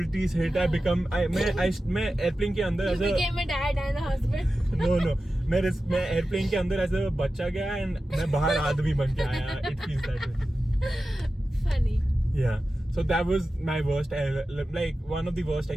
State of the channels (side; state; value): both; normal; correlation 0.93